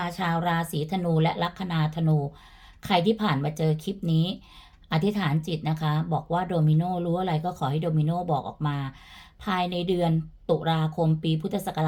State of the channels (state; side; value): identical; both; correlation 1.00